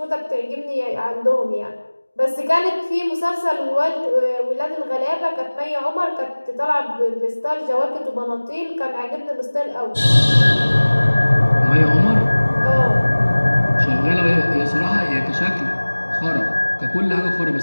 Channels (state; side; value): inverted; both; correlation -1.00